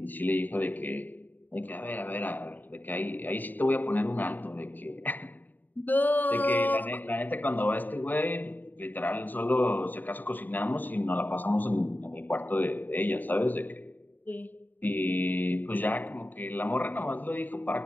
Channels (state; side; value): late; right; 0.088 ms